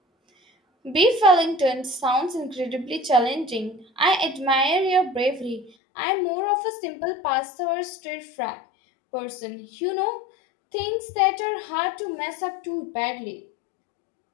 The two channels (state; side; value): drops out; right; at 5.7 s